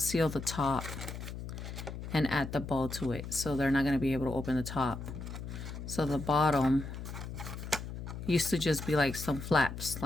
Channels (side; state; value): left; noise; hum, 8 dB below the sound